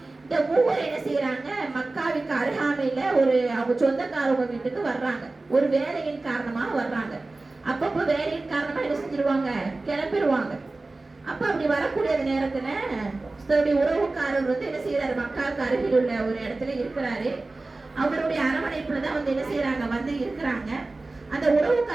இந்த மூவர் என்ன செய்யறாங்க, மக்காவுக்கு அருகாமையில ஒரு அவங்க சொந்தக்காரவங்க வீட்டுக்கு வர்றாங்க. ஒரு வேலையின் காரணமாக வர்றாங்க. அப்பப்போ வேலையின் காரணமா என்ன செஞ்சிருவாங்க, கிளம்பிடுவாங்க. அப்ப அப்படி வரக்கூடிய நேரத்துல தன்னுடைய உறவுக்காரர் வந்து என்ன செய்யறாரு, மக்காவுக்கு அருகில் உள்ள ஒரு இடத்துல இருக்கிறாரு. அவருடைய அரவணைப்புலதான் வந்து என்ன செய்யறாங்க, வந்து இருக்கிறாங்க. அந்த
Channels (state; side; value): quieter; left; 3.2 dB